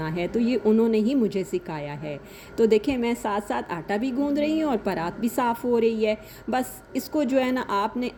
है, तो ये उन्होंने ही मुझे सिखाया है। तो देखें मैं साथ साथ आटा भी गूंद रही हूँ और परात भी साफ़ हो रही है। बस इसको जो है ना आपने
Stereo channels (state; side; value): identical; both; correlation 1.00